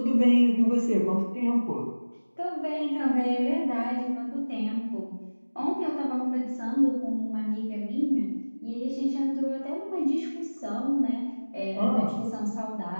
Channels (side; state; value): both; inverted; correlation -1.00